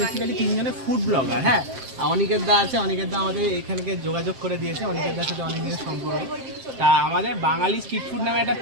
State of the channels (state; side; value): late; left; 7.6 ms